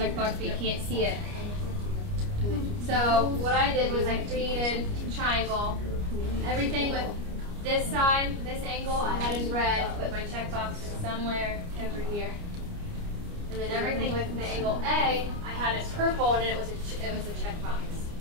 but you can't see it. So what I did was I created a triangle. Everything with this side, this angle, I had in red, but my checkbox is somewhere over here. And then everything with the angle A, I had in purple, and it was a checkbox.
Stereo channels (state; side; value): late; left; 29 ms